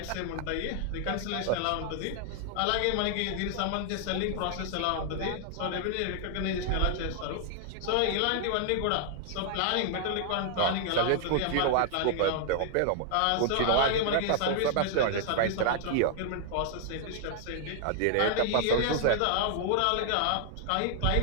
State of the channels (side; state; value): both; different; correlation 0.00